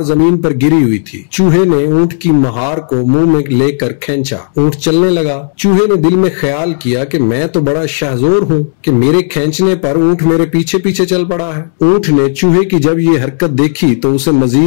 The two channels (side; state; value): right; silent; digital silence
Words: जमीन पर गिरी हुई थी। चूहे ने ऊंट की महार को मुंह में लेकर खींचा। ऊंट चलने लगा। चूहे ने दिल में ख्याल किया कि मैं तो बड़ा शाहजोर हूँ कि मेरे खींचने पर ऊंट मेरे पीछे पीछे चल पड़ा है। ऊंट ने चूहे की जब ये हरकत देखी तो उसे